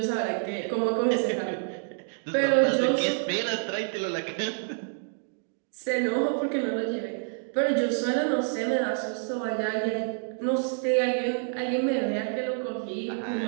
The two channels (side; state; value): left; silent; 59 dB below the other